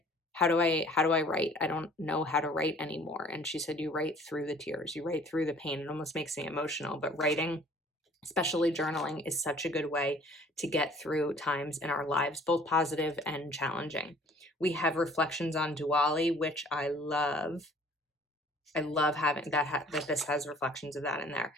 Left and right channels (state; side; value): normal; both; correlation 0.53